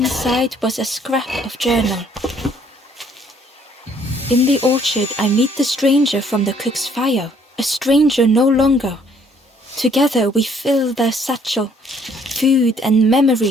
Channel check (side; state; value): both; normal; correlation 0.63